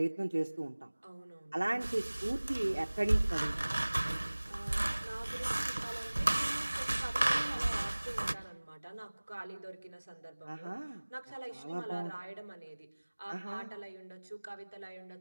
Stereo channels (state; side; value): inverted; both; correlation -1.00